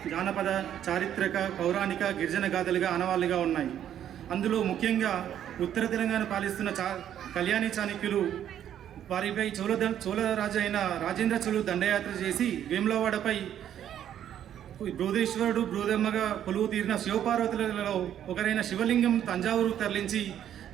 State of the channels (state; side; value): quieter; left; 10.4 dB